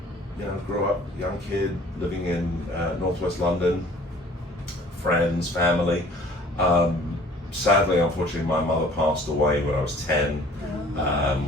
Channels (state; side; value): normal; both; correlation 0.52